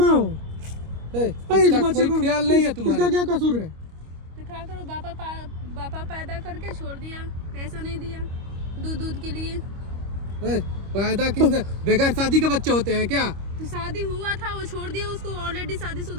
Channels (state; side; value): late; left; 25 ms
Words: हो? इस बच्चे को ख्याल नहीं है तुम्हारा? इसका क्या कसूर है? तो क्या करो, बापा पैदा करके छोड़ दिया, पैसा नहीं दिया दूध के लिए। पैदा किसने? बगैर शादी के बच्चे होते हैं क्या? तो शादी हुआ था, वो छोड़ दिया, उसको ऑलरेडी